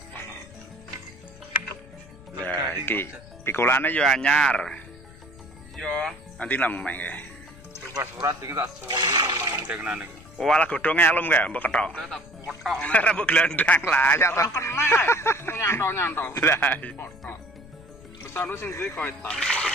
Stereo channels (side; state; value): left; noise; rumble, 20 dB below the sound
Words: Lah iki pikulane yo anyar. Iya. Nanti nang mek nggih. Bebas surat iki tak suweli nang dengenane iki. Walah godhong elum kae mbok ketok. Tak potok. Ora mbok glandang lah ya to. Kena. Nyantol. Lah iya. Potok. Besar sing duwe koetan.